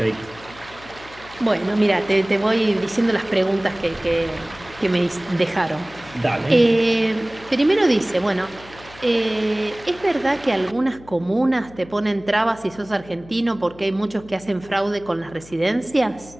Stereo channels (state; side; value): noise; left; hum, 21 dB below the sound